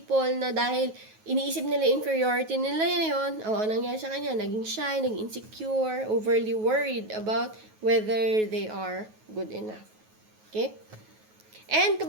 na dahil iniisip nila inferiority nila yun, nangyari sa kanya, naging shy, naging insecure, overly worried about whether they are good enough. Okay? And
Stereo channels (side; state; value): left; late; 9.3 ms